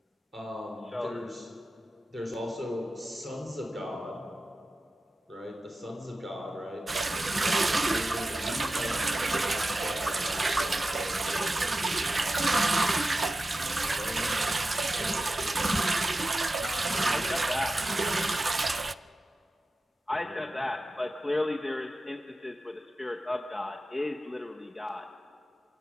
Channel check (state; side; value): normal; both; correlation 0.93